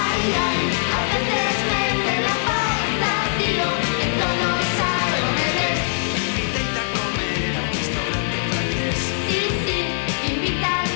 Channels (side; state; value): right; silent; 64 dB below the other